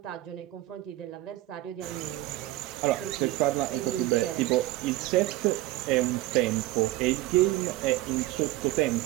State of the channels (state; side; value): quieter; left; 16.6 dB